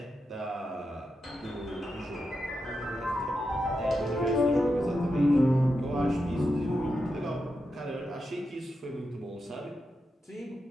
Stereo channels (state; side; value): normal; both; correlation 0.87